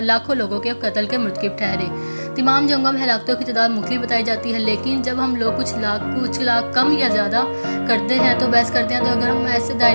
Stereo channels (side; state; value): both; inverted; correlation -1.00